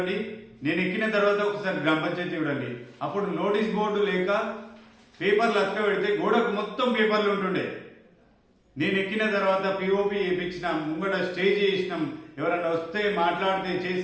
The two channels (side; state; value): both; identical; correlation 1.00